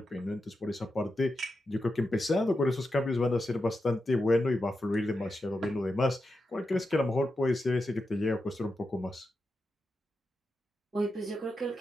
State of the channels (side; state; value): both; normal; correlation 0.88